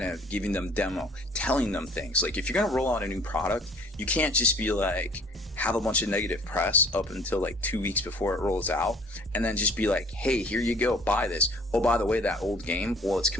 giving them demo, telling them things. Like, if you're going to roll out a new product, you can't just be like, have a bunch of negative press up until like 2 weeks before it rolls out, and then just be like, hey, here you go, buy this. Oh, by the way, that old game, well, it's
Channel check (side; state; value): both; normal; correlation 0.53